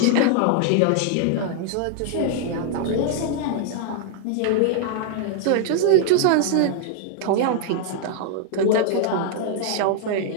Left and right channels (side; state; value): both; different; correlation -0.01